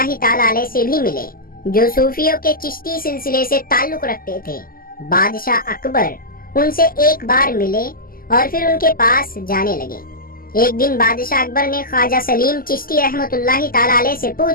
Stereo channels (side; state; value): right; late; 0.42 ms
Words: ताला अलैह से भी मिले, जो सूफियों के चिश्ती सिलसिले से ताल्लुक रखते थे। बादशाह अकबर उनसे एक बार मिले और फिर उनके पास जाने लगे। एक दिन बादशाह अकबर ने ख्वाजा सलीम चिश्ती रहमतुल्लाहि ताला अलैह से